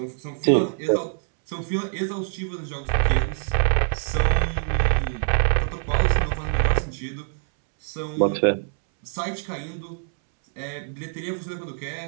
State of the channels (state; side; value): silent; left; 62 dB below the other